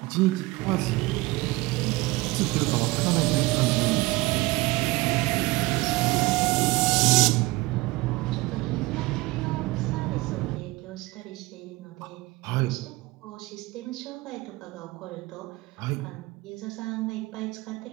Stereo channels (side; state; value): left; quieter; 21.2 dB